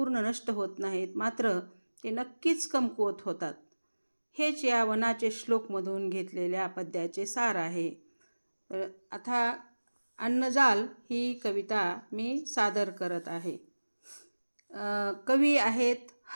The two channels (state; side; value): inverted; both; correlation -1.00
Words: नष्ट होत नाहीत, मात्र ते नक्कीच कमकुवत होतात. हेच या वनाचे श्लोकमधून घेतलेल्या पद्याचे सार आहे. तर आता अन्नजाल ही कविता मी सादर करत आहे. कवी आहेत